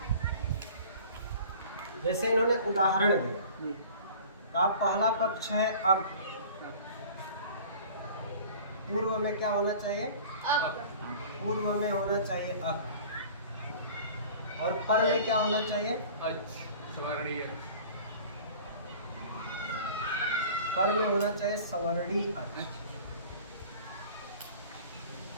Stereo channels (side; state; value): both; inverted; correlation -0.44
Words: जैसे इन्होंने उदाहरण दिया, आप पहला पक्ष है अब, पूर्व में क्या होना चाहिए? पूर्व में होना चाहिए अक, और पर में क्या होना चाहिए? पर में होना चाहिए सवर्णी अच।